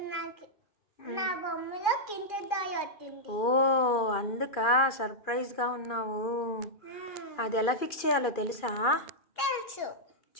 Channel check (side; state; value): right; late; 2.4 ms